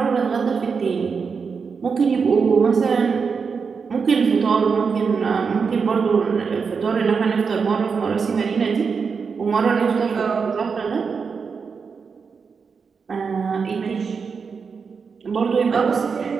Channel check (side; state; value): left; quieter; 5.6 dB